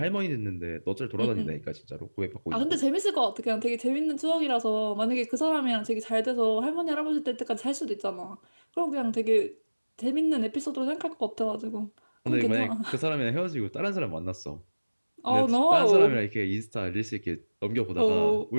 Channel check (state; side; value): inverted; both; correlation -1.00